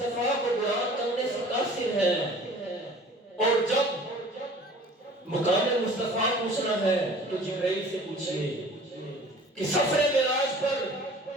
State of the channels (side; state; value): both; normal; correlation 0.46